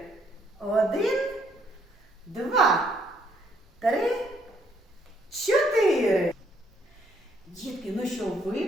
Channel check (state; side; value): normal; both; correlation 0.69